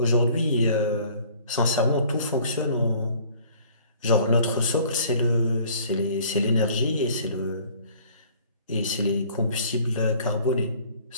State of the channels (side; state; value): both; inverted; correlation -0.54